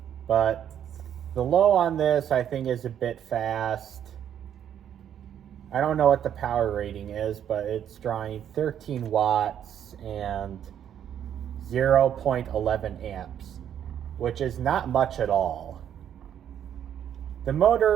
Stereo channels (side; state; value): left; quieter; 9.6 dB